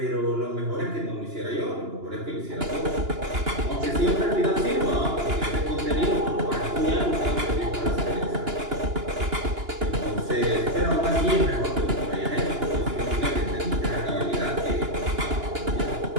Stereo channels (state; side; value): late; left; 2.9 ms